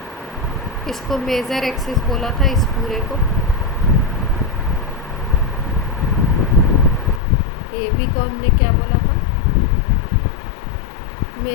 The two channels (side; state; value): right; drops out; at 7.2 s